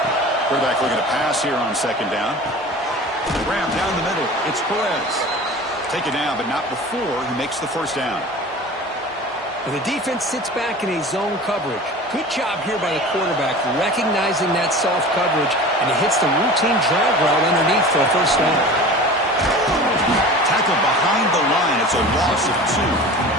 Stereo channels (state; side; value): normal; both; correlation 0.38